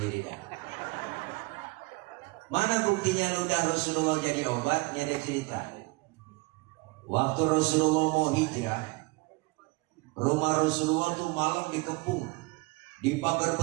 dah. Mana buktinya ludah Rasulullah jadi obat? Ini ada cerita. Waktu Rasulullah mau hijrah, rumah Rasulullah tuh malam dikepung, dipagar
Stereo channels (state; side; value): quieter; left; 24.9 dB